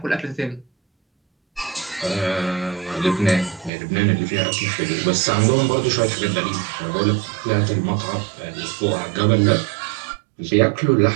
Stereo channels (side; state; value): left; drops out; at 3.7 s